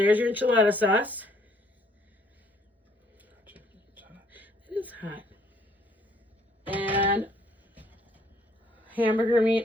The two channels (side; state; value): both; normal; correlation 0.64